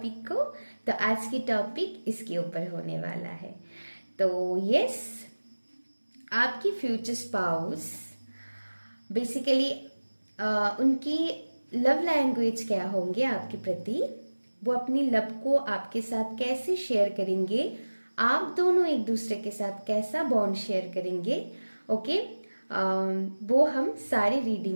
को, तो आज की टॉपिक इसके ऊपर होने वाला है। तो यस, आपकी फ्यूचर स्पाउस बेसिकली उनकी लव लैंग्वेज क्या होंगे आपके प्रति, वो अपनी लव को आपके साथ कैसे शेयर करेंगे, आप दोनों एक दूसरे के साथ कैसा बॉन्ड शेयर करेंगे। ओके, वो हम सारे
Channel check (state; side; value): inverted; both; correlation -1.00